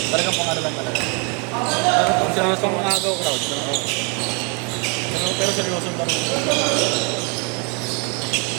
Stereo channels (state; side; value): quieter; left; 34.1 dB